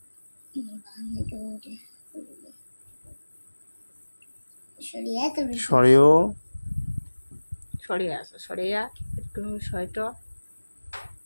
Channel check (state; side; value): inverted; both; correlation -1.00